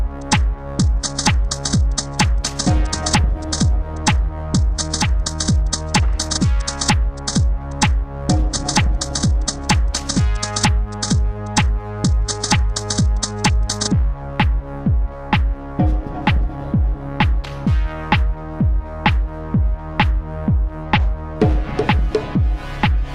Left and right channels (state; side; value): identical; both; correlation 1.00